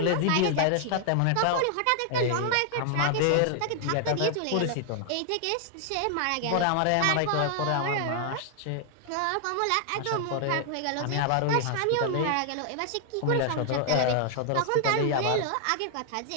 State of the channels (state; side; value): different; both; correlation 0.00